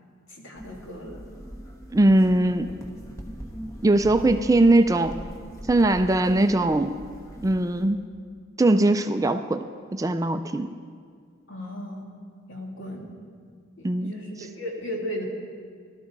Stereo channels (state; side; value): normal; both; correlation 0.81